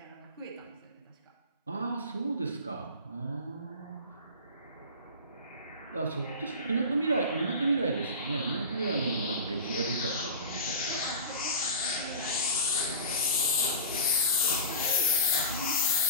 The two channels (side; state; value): both; inverted; correlation -0.31